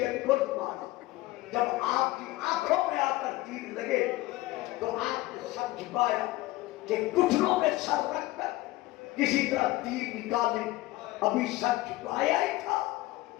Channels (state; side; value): quieter; right; 18.4 dB